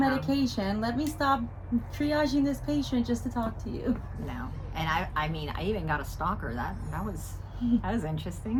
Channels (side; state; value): both; identical; correlation 1.00